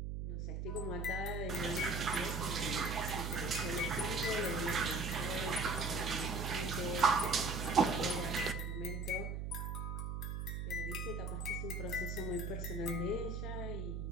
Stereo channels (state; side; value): noise; right; hum, 3 dB below the sound